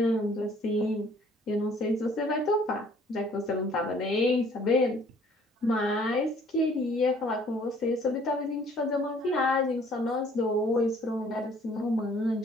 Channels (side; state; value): both; normal; correlation 0.58